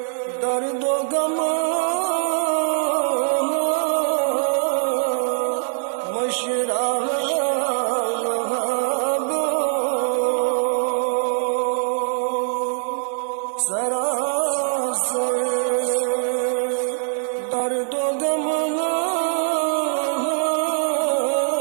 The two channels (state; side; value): silent; left; digital silence